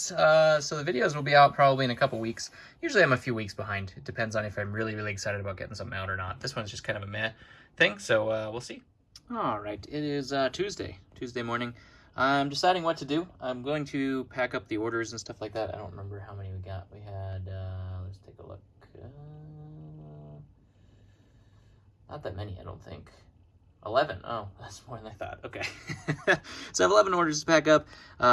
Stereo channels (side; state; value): both; identical; correlation 1.00